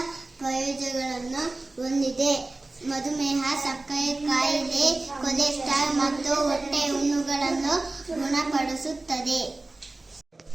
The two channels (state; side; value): quieter; left; 3.1 dB